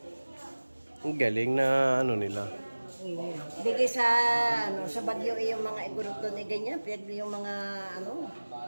Ang galing na ano nila. Bigay sa sa Bagyo yung mga igurot doon ganyan, pero yung mga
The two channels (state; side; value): inverted; both; correlation -1.00